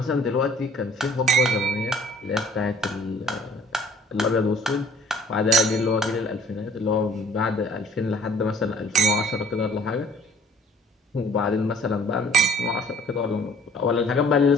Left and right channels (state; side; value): normal; both; correlation 0.55